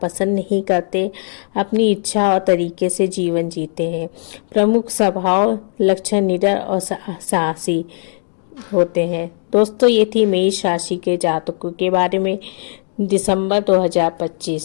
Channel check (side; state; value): right; silent; 60 dB below the other